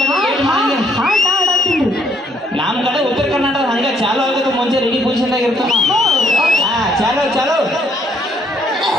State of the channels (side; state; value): both; normal; correlation 0.67